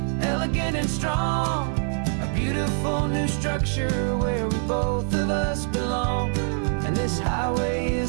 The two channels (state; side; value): silent; left; 56 dB below the other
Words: elegant and strong, a beautiful new structure where we both of us belong. And this highway